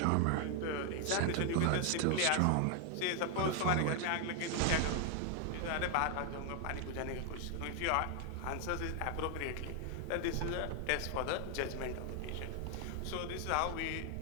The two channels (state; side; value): different; both; correlation 0.00